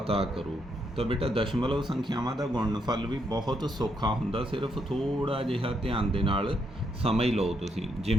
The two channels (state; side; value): normal; both; correlation 0.77